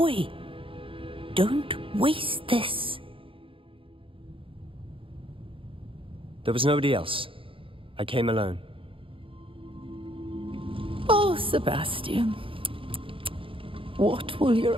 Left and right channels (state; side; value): late; left; 0.26 ms